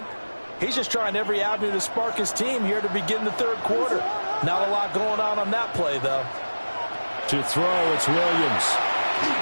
He's just trying every avenue to spark his team here to begin the third quarter. Not a lot going on that play, though. To throw, it's Williams.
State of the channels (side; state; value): both; inverted; correlation -1.00